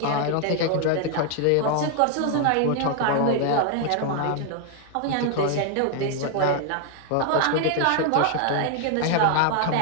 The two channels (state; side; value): different; both; correlation 0.00